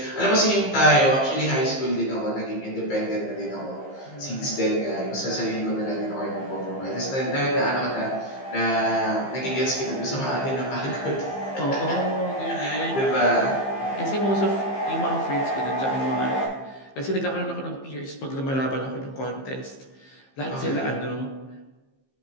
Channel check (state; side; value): late; right; 15 ms